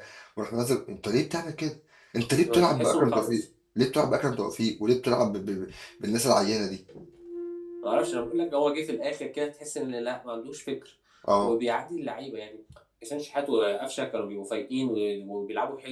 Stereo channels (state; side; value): identical; both; correlation 1.00